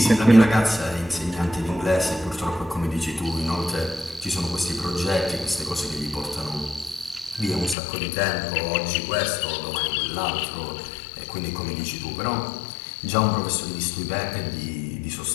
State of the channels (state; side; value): drops out; right; at 7.8 s